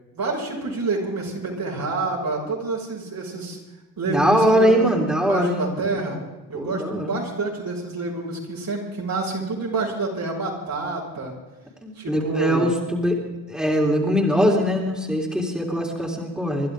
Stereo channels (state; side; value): normal; both; correlation 0.49